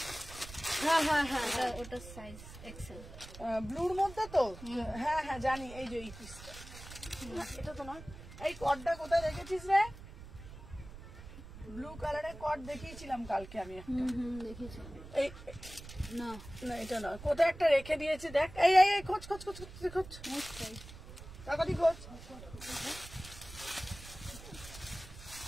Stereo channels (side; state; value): right; noise; rumble, 15 dB below the sound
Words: হ্যাঁ ওটা সাইজ এক্সেল, ব্লুর মধ্যে তো, হ্যাঁ জানি। এই যে এই পিসটা, এটা তো নয়। এই কটটা কোথায় রেখেছিস রে? ব্লু কালারের কট দেখিয়েছিলাম কালকে আমি একটা, দেখেছি। এই না না এটা নয়, কোথায় একটা রেখে দিয়েছি দেখ। এই খোঁজ তাড়াতাড়ি খোঁজ।